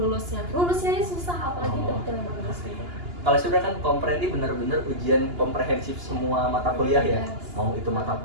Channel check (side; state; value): left; late; 2.9 ms